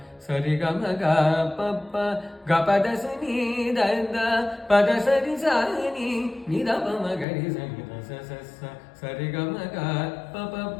ಸರಿ ಗಮ ಗ ಪ ಪ ಗ ಪದ ಸ ನಿ ದ ದ ಪದ ಸ ನಿ ಸ ನಿ ದ ಬ ಮ ಗ ರಿ ಸ ನಿ ದ ಸ ಸ ಸ ಸರಿ ಗಮ ಗ ಪ ಪ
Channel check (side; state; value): right; drops out; at 7.2 s